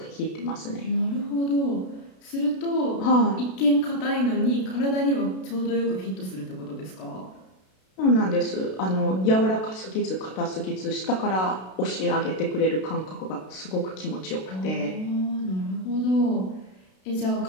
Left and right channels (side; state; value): right; late; 32 ms